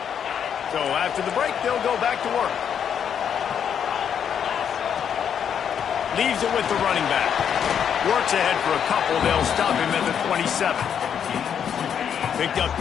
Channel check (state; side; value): quieter; right; 8.2 dB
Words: So after the break, they'll go back to work. Leaves it with the running back. Works ahead for a couple. They'll stop him at the 27. Picked up